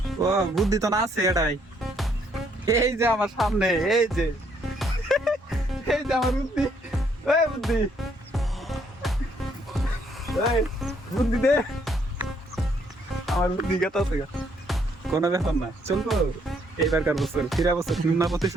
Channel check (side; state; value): both; normal; correlation 0.69